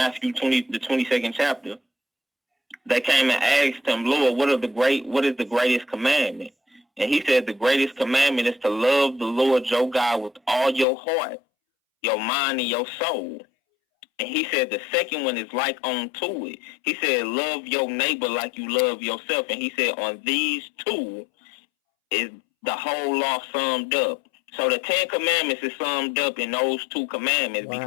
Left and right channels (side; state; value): right; drops out; at 10.9 s